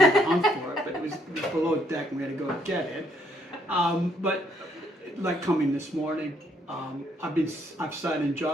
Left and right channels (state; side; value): normal; both; correlation 0.70